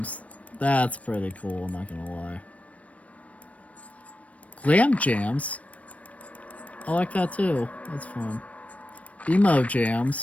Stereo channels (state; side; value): late; right; 0.066 ms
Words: That's pretty cool, I'm not gonna lie. Glam Jams. I like that too. That's fun. Emo